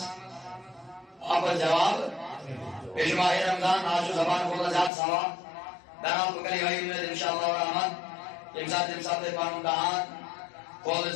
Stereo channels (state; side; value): drops out; right; at 4.9 s